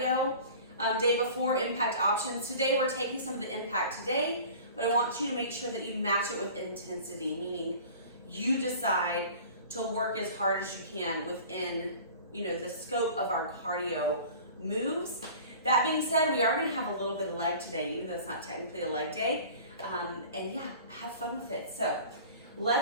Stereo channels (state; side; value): inverted; both; correlation -0.42